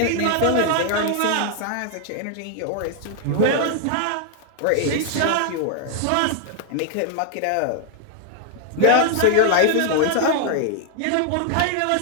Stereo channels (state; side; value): different; both; correlation 0.00